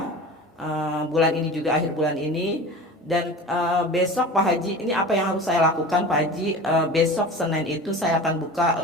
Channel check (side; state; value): both; normal; correlation 0.35